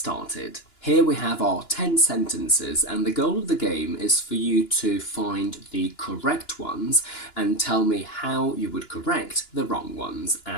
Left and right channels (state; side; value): late; right; 2.9 ms